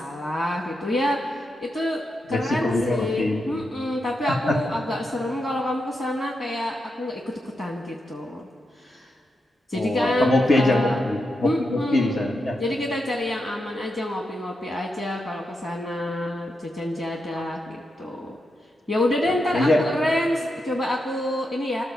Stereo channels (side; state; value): both; normal; correlation 0.86